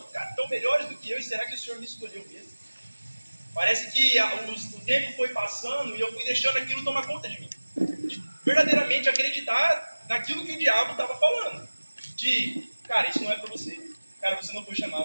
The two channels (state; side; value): inverted; both; correlation -1.00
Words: melhores do que eu, e será que o Senhor me escolheu mesmo? Parece que o tempo foi passando e eu fui deixando aquilo tomar conta de mim. De verdadeiramente acreditar naquilo que o diabo estava falando. Cara, isso não é para você. Cara, você não foi